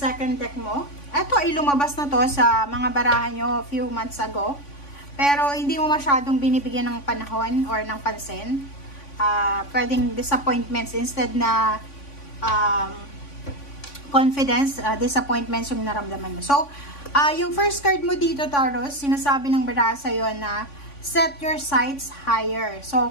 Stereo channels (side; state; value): right; late; 3.5 ms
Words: deck mo. Ito ay lumabas na to sa mga barahan nyo a few months ago. Pero hindi mo masyadong binibigyan ng panahon or ng pansin. Pwedeng disappointments instead na confidence, disappointments yung naramdaman mo. So, yung first card mo dito, Taurus, sinasabi ng baraha sa'yo na set your sights higher. So,